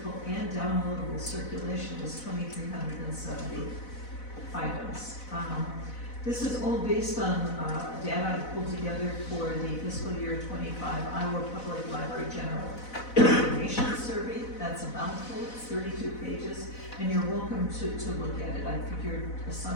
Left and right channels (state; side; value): late; right; 4.0 ms